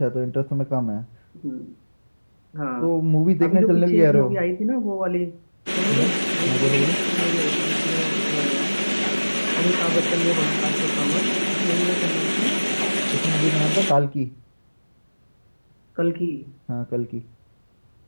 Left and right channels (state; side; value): inverted; both; correlation -1.00